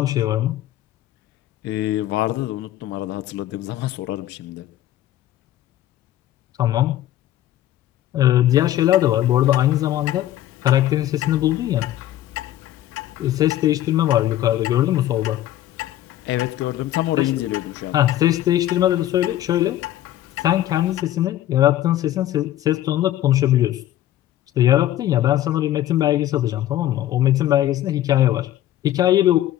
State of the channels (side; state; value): right; quieter; 13.3 dB